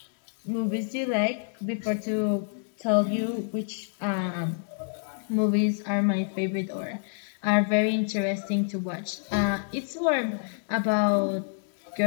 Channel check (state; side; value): silent; right; digital silence